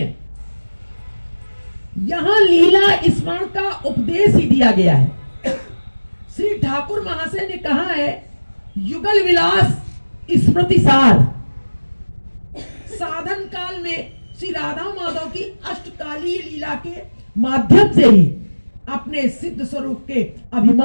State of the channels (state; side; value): inverted; both; correlation -1.00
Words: यहां लीला स्मरण का उपदेश ही दिया गया है। श्री ठाकुर महाशय ने कहा है युगल विलास स्मृति सार, साधन काल में श्री राधा माधव की अष्टकालीय लीला के माध्यम से ही अपने सिद्ध स्वरूप के